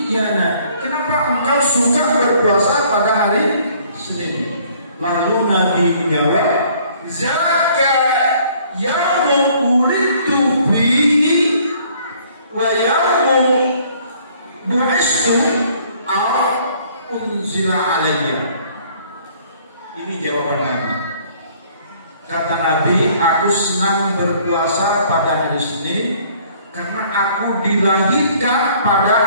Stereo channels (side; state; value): both; inverted; correlation -0.59